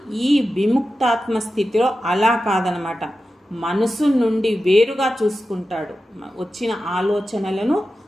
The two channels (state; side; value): normal; both; correlation 0.92